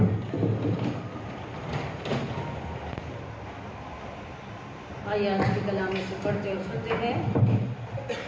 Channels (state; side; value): identical; both; correlation 1.00